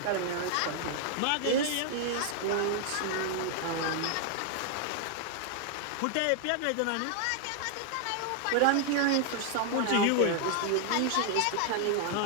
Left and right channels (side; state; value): both; different; correlation 0.00